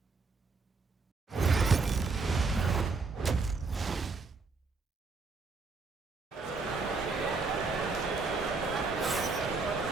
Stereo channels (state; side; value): quieter; left; 4.2 dB